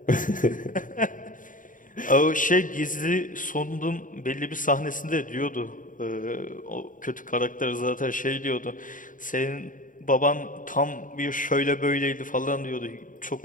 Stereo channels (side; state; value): right; late; 0.39 ms